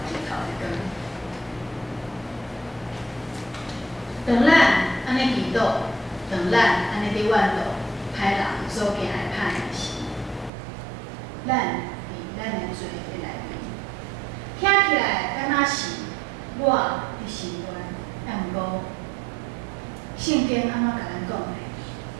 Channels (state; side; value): drops out; left; at 10.5 s